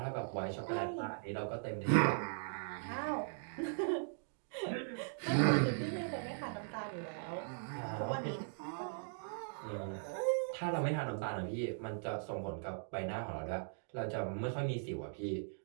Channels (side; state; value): left; silent; digital silence